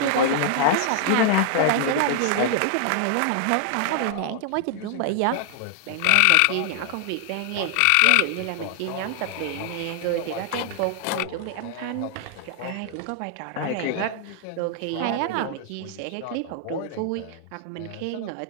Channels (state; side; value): different; both; correlation 0.00